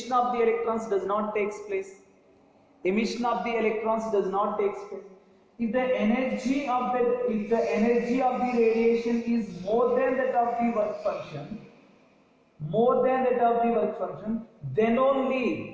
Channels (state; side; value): identical; both; correlation 1.00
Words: of the electrons does not take place. Emission of the electrons does not take place. If the energy of the radiation is more than that of the work function, then